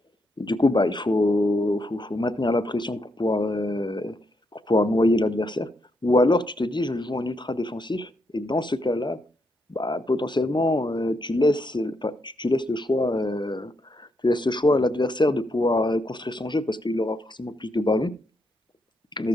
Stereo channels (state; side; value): normal; both; correlation 0.79